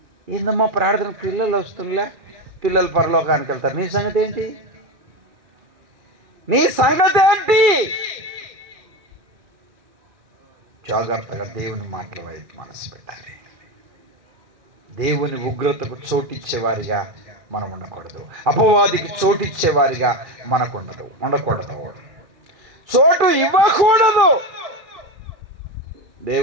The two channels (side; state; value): left; late; 2.3 ms